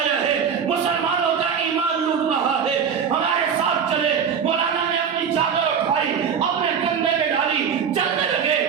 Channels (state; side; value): quieter; left; 7.1 dB